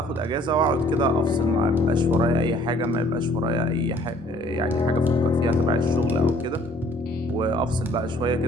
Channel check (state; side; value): normal; both; correlation 0.57